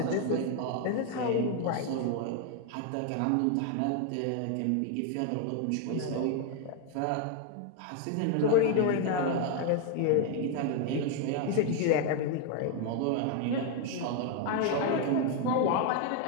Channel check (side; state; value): both; different; correlation 0.01